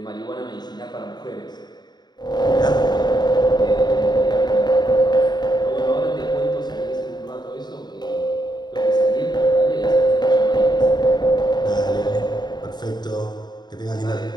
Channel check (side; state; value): right; late; 0.20 ms